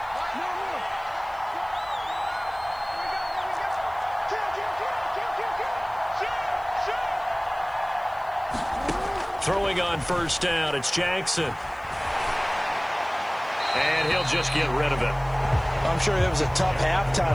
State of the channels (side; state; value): left; noise; hiss, 28 dB below the sound